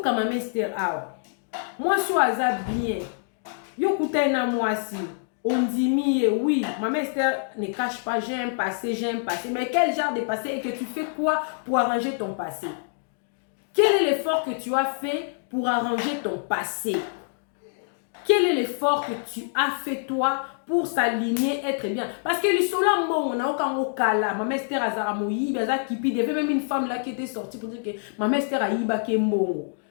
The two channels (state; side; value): silent; right; digital silence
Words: Maman Esther awa. Moi je suis bien. Yo kouta na moi si. On dit oui, Maman Esther ne cache pas, j'ai un passé. Mais quel genre de passé et que tu fais quoi pour arranger ton passé? Quel est l'effort que tu as fait pour arranger ton passé? Quel est l'effort que tu as fait toi pour s'aligner, être bien? Parce que le sola on a aucun okala. Maman Esther azara moyi, baza kipi. Il y avait même une femme là qui était sortie pour dire que Maman Esther a yiba ke mbongo.